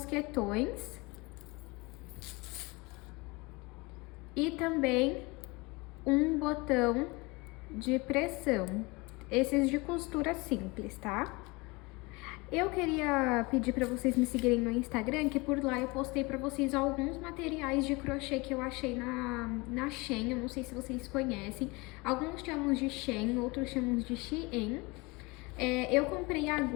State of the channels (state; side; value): quieter; right; 25.3 dB